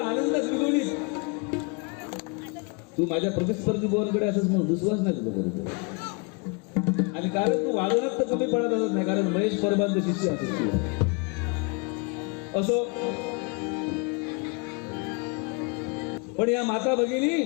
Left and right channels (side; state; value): right; quieter; 32.7 dB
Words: आनंदच द्विगुणित. तू माझ्या प्रतिस्पर्धी बोलकडे असंच म्हणून दुसवाच नाही तुझं बरोबर. आणि कारण तू वादनात तर कमी पडत असत नाही कारण महेश परबांचं शिष्य असो. पण या माता भगिनी